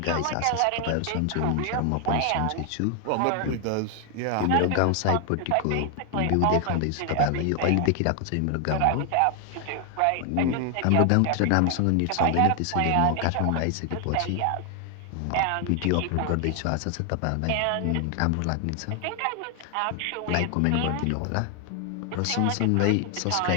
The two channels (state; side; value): different; both; correlation 0.00